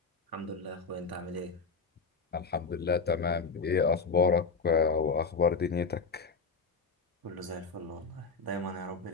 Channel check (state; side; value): quieter; right; 4.7 dB